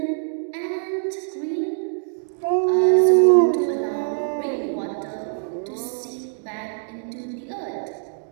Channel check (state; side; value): silent; left; digital silence